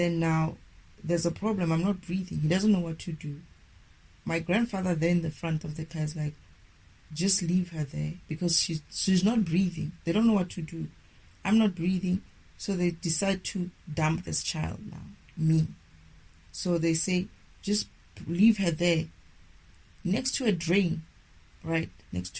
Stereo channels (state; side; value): identical; both; correlation 1.00